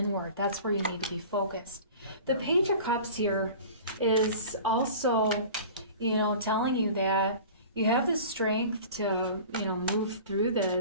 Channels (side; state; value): both; inverted; correlation -0.40